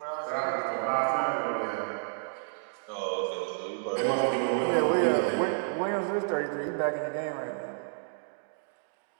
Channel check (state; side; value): silent; left; digital silence